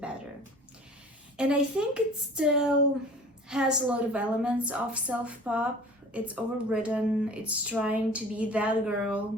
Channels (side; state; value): both; normal; correlation 0.45